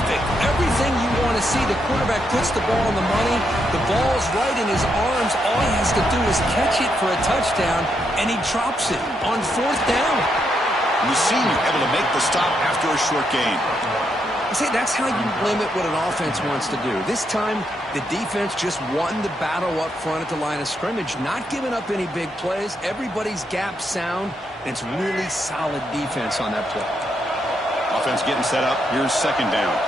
Everything you want to see. The quarterback puts the ball on the money. The ball's right in his arms. All he has to do is catch it for a touchdown, and he drops it on 4th down. And the senior able to make the stop after a short gain. See, that's how you limit what an offense wants to do. This time, the defense just won the battle up front at the line of scrimmage, not giving up any big plays. Everybody's gap sound, and it's really solid defense on that play. Offense getting set up. Here's 2nd down.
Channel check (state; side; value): normal; both; correlation 0.79